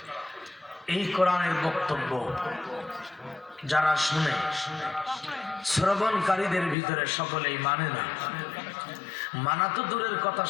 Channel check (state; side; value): drops out; right; at 6.8 s